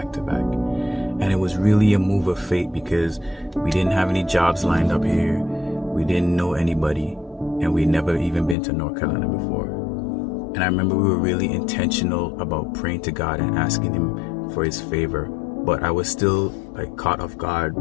to back. And it was really a move of fate because we didn't have any jobs lined up here, we didn't know anybody, and we'd never even been to North Carolina before. And I remember we were really intentional about praying to God and asking Him for His favor, but I was still caught off guard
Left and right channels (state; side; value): drops out; right; at 8.6 s